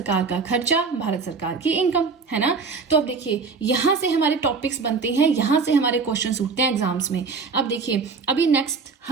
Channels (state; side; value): quieter; left; 4.8 dB